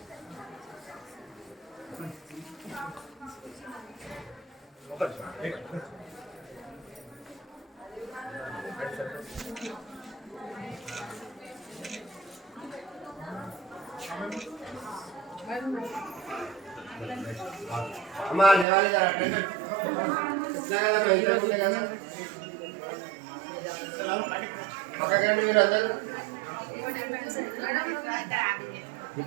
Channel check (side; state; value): left; drops out; at 18.7 s